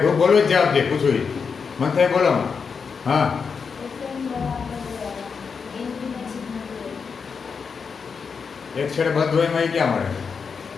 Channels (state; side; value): quieter; right; 5.7 dB